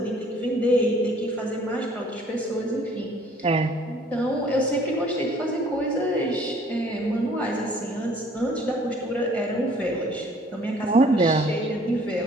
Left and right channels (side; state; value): both; normal; correlation 0.56